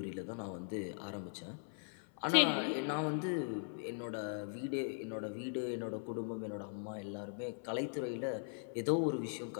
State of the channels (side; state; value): right; silent; 51 dB below the other